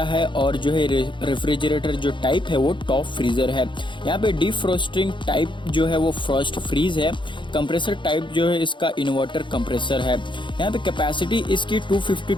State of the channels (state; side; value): late; right; 0.23 ms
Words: है और जो है रेफ्रिजरेटर जो टाइप है वो टॉप फ्रीज़र है। यहाँ पे डिफ्रोस्टिंग टाइप जो है वो फ्रॉस्ट फ्रीज है। कंप्रेसर टाइप जो है इसका इन्वर्टर कंप्रेसर है। यहाँ पे कैपेसिटी इसकी